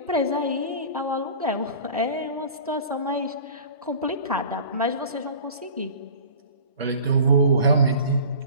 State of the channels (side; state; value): both; inverted; correlation -0.41